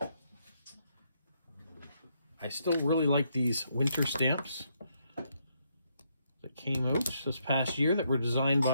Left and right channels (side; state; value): both; inverted; correlation -0.76